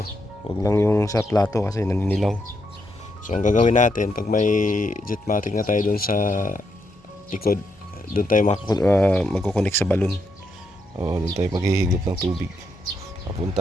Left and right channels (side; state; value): both; normal; correlation 0.80